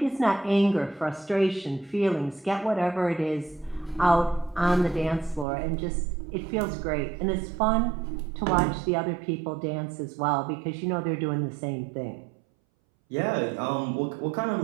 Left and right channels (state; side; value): drops out; left; at 5.5 s